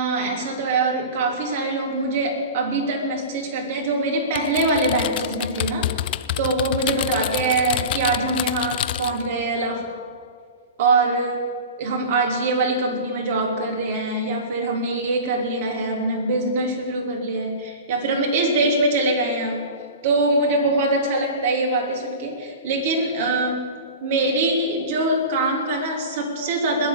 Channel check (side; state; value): both; inverted; correlation -0.32